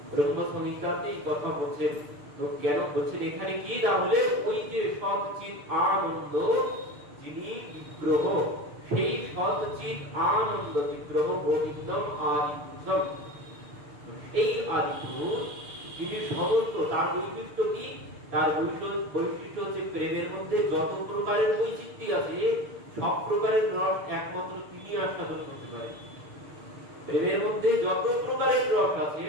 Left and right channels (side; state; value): left; late; 6.9 ms